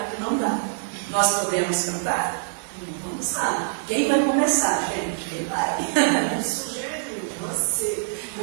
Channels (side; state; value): left; silent; 59 dB below the other